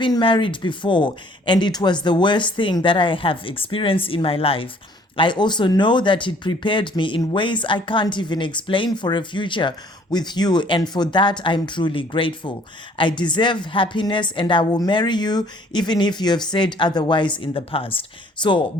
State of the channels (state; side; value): normal; both; correlation 0.58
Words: married before, and it was the worst thing that I have experienced in my life. I also know that it prepared me in ways I can't even explain for a future with you, and for that I'm truly grateful. I deserve happiness, and I will marry you even if you have said otherwise in the past. So